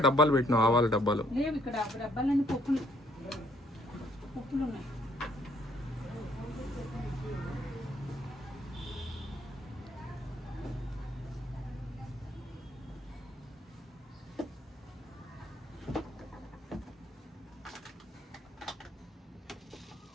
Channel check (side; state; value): both; normal; correlation 0.65